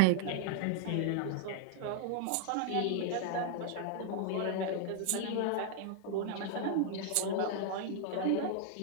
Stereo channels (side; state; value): both; different; correlation 0.00